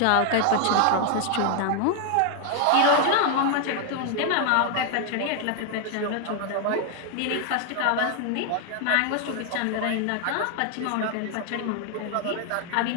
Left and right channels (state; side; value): different; both; correlation 0.00